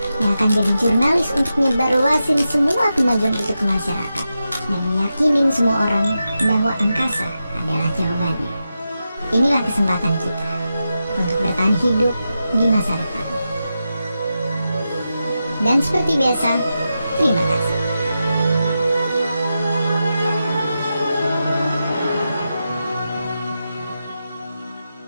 yang akan jadi jurnalis untuk nyebarluasin semua kemajuan itu ke masyarakat, dan meyakinin semua orang bahwa angkasa adalah jawabannya. Inilah kesempatan kita untuk bertahan hidup di masa depan. Dan seperti biasa, terima kasih.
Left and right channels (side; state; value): both; inverted; correlation -0.89